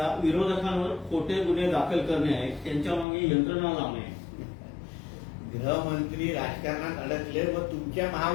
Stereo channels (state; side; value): drops out; right; at 3.1 s